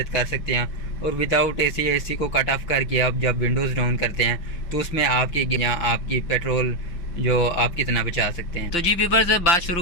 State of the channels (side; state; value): right; late; 6.0 ms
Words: کر سکتے ہیں، اور وداؤٹ اے سی کو کٹ آف کر کے آپ جب ونڈوز ڈاؤن کرتے ہیں تو اس میں آپ کی پیٹرول جو آپ کتنا بچا سکتے ہیں۔ تو جی ویورز، بات